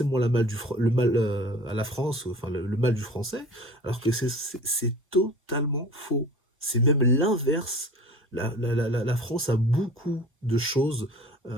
le mal, à la France, enfin le mal du français, alors que c'est totalement faux. C'est même l'inverse. La France a beaucoup de choses,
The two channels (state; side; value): normal; both; correlation 0.42